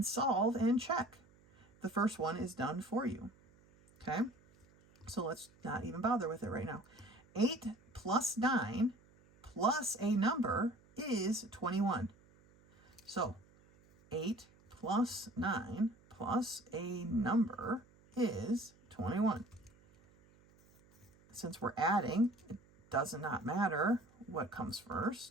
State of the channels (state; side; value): noise; right; hum, 29 dB below the sound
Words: solve and check. The first one is done for you. Okay, so let's not even bother with it right now. 8 plus 9 plus a number is 21. So 8 plus 9 plus a number is 21. Since we're adding, it does not matter what comes